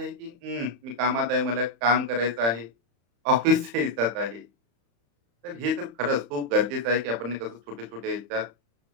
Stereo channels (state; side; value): late; left; 35 ms